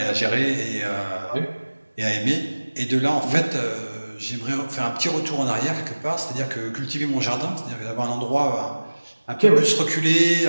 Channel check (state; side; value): inverted; both; correlation -1.00